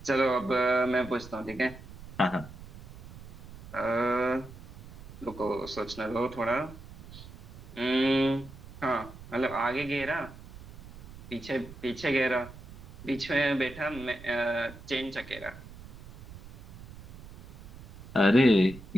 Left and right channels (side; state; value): right; noise; rumble, 17 dB below the sound